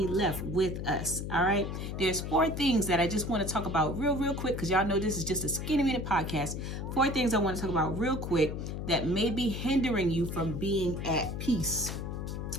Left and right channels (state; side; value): noise; left; hum, 5 dB below the sound